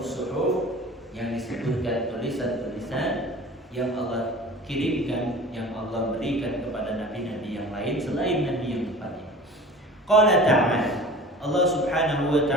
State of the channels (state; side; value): normal; both; correlation 0.41